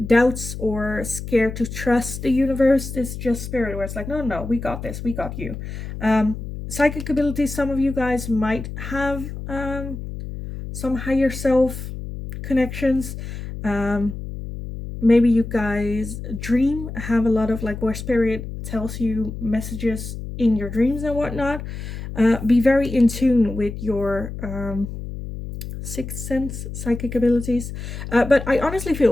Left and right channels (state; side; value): noise; left; hum, 8 dB below the sound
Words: doubts or scared to trust the universe, it's just spirit where it's like, no, we got this, we got you. Psychic abilities, some of you guys might have some higher self connections. Maybe you guys dream, have a lot of like where spirit tells you messages in your dreams and whatnot. Be very in tune with your sixth sense psychic abilities. But I honestly